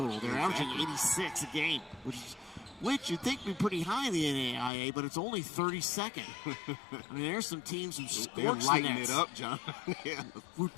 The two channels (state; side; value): drops out; right; at 4.7 s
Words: They're averaging 86 a game, which you'd think would be pretty high in the NAIA, but it's only 32nd. I mean, there's some teams who scorch the nets. It up, John. Yeah.